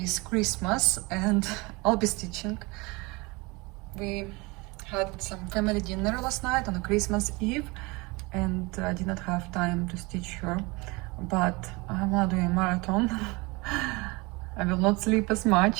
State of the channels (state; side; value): quieter; left; 25.4 dB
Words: is Christmas and I'll be stitching. We had some family dinner last night on a Christmas Eve, and I did not have time to stitch her, but I'm gonna do a marathon. I will not sleep as